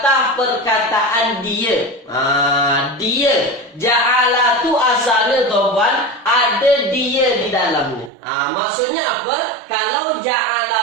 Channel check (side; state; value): left; drops out; at 8.1 s